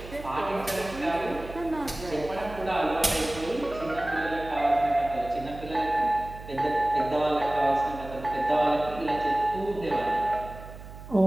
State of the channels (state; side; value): noise; right; hum, 14 dB below the sound